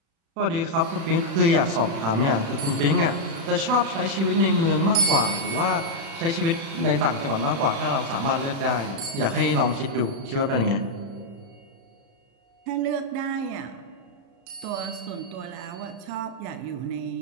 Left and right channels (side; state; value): left; late; 36 ms